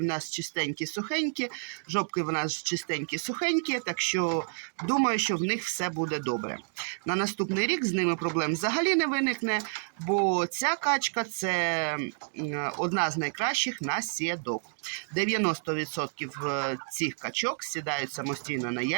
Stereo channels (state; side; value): silent; left; digital silence